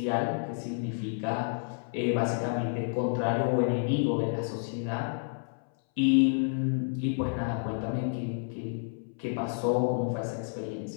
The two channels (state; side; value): silent; right; 58 dB below the other